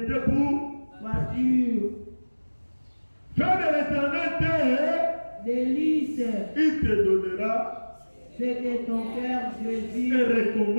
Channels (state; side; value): inverted; both; correlation -1.00